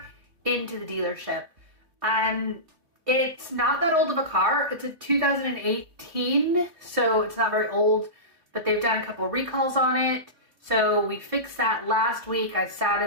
into the dealership. It's not that old of a car. It's a 2018, so it's not very old, but they've done a couple of recalls on it. So we fixed that last week. I sat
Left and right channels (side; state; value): left; late; 2.9 ms